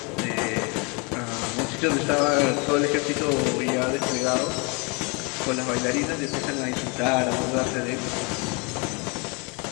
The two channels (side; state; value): right; quieter; 31.7 dB